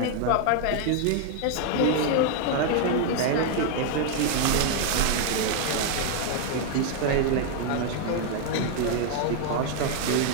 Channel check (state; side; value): different; both; correlation 0.00